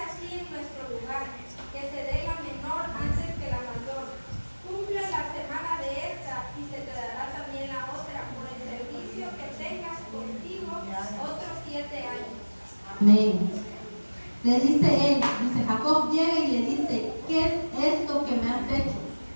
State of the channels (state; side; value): inverted; both; correlation -1.00